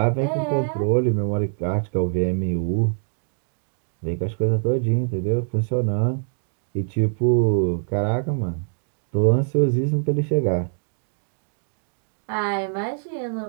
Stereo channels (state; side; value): silent; left; digital silence